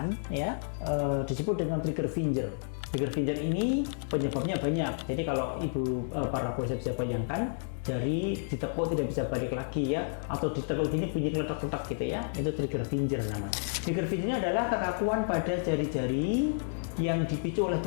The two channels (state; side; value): silent; right; digital silence